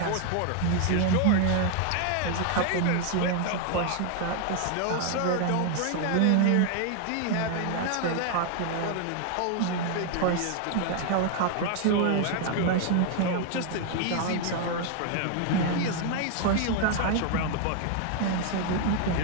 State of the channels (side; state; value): both; different; correlation 0.00